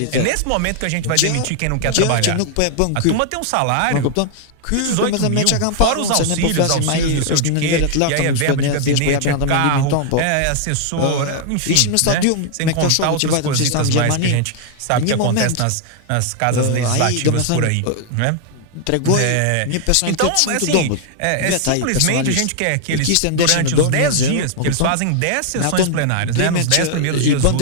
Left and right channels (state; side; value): different; both; correlation 0.00